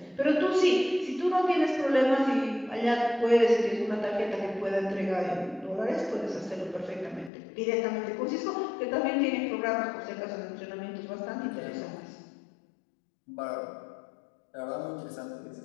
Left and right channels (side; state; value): right; drops out; at 7.3 s